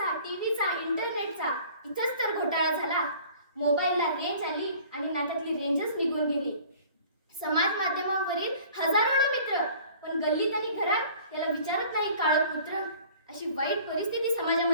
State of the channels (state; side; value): inverted; both; correlation -0.49